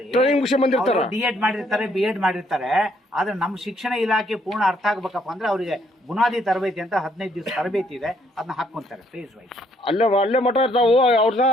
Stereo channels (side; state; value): both; normal; correlation 0.69